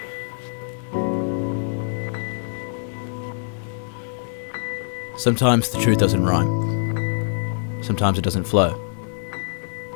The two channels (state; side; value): silent; right; digital silence